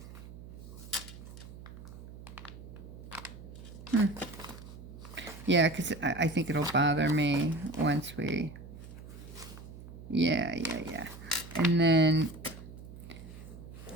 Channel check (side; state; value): right; noise; hum, 14 dB below the sound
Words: Yeah, because I think it'll bother me once we... Yeah. And then